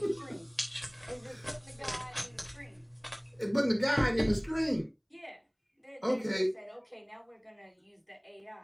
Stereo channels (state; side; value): identical; both; correlation 1.00